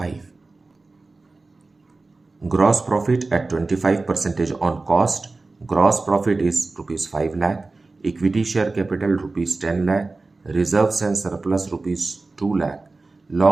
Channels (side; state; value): left; quieter; 3.5 dB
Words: Gross profit at 25% on cost. Gross profit is rupees 5 lakh. Equity share capital rupees 10 lakh. Reserves and surplus rupees 2 lakh.